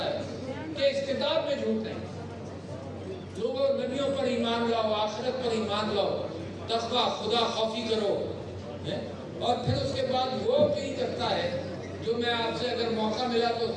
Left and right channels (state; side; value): identical; both; correlation 1.00